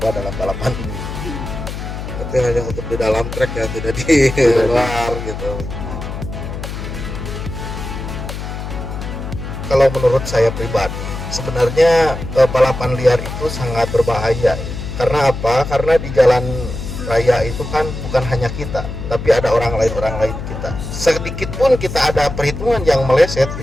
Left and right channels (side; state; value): left; noise; hum, 7 dB below the sound